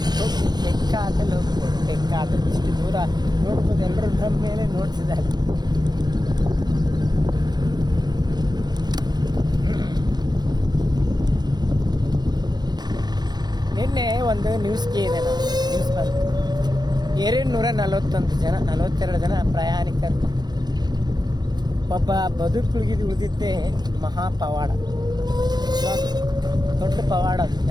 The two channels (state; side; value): late; left; 0.20 ms